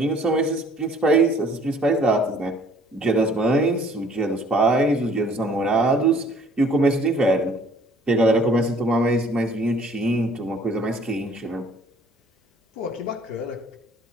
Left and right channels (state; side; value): normal; both; correlation 0.57